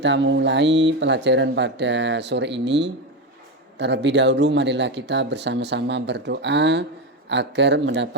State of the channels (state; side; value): normal; both; correlation 0.14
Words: mulai pelajaran pada sore ini, terlebih dahulu marilah kita bersama-sama berdoa agar